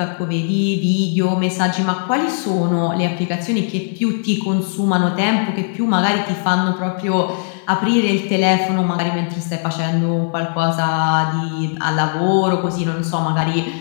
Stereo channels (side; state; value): right; silent; digital silence